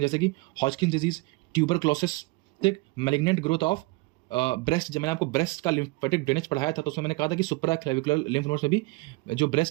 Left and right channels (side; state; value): left; quieter; 23.1 dB